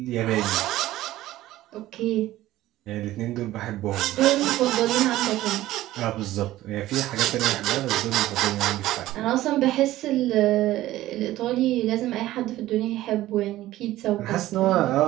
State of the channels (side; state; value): left; quieter; 15.4 dB